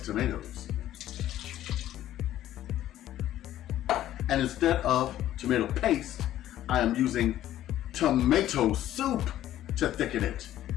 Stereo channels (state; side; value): quieter; right; 12.9 dB